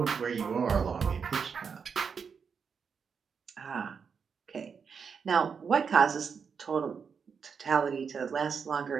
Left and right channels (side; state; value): left; quieter; 6.2 dB